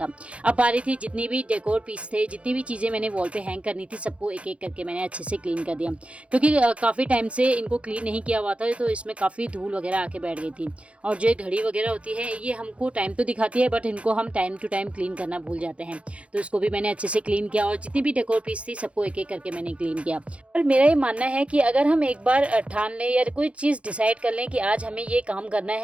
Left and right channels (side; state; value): left; late; 0.062 ms